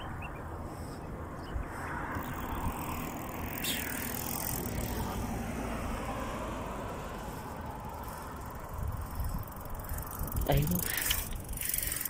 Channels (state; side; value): identical; both; correlation 1.00